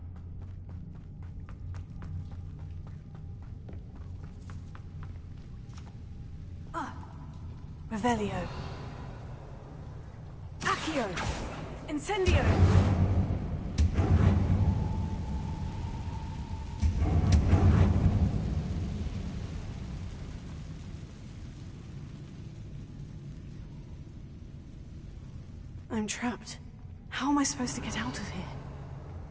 Revelio. Accio. Incendio. I'm trapped. How am I supposed to get out of here?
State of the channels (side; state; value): both; identical; correlation 1.00